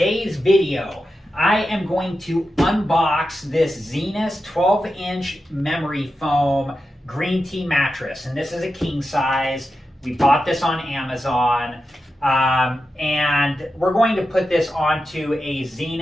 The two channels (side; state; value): both; normal; correlation 0.90